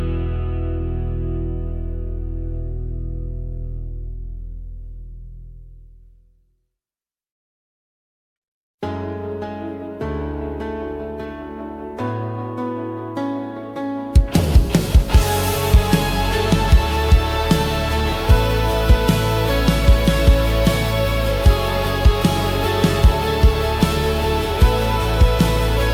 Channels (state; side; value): identical; both; correlation 1.00